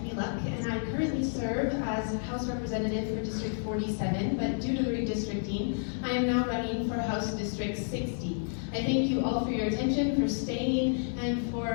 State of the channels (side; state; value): right; silent; digital silence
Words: Luck, and I currently serve as House Representative for District 47, but due to the redistricting, I am now running for House District 60. I thank you all for your attention, for staying, and